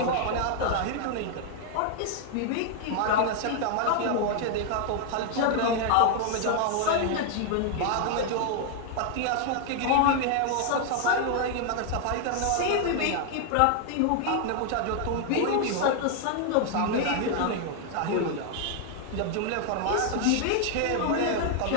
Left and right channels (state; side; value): different; both; correlation 0.00